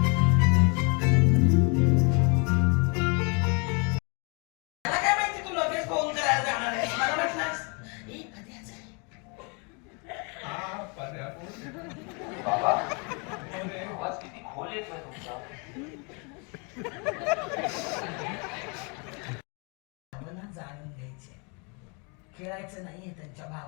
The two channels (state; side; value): quieter; right; 33.6 dB